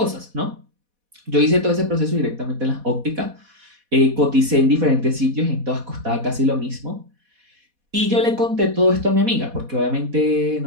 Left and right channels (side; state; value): left; late; 4.1 ms